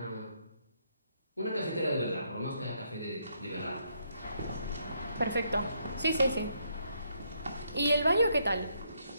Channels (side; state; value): both; inverted; correlation -0.74